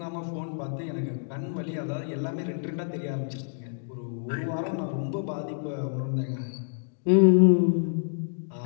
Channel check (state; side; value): silent; right; digital silence